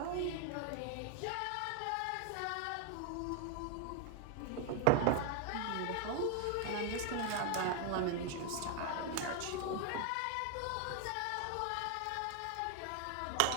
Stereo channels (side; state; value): both; different; correlation 0.00